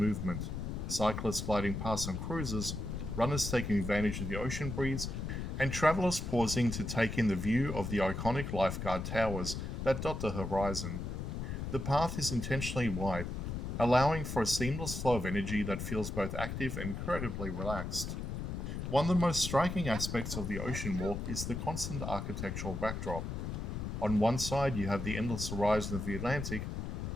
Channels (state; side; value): noise; left; rumble, 4 dB below the sound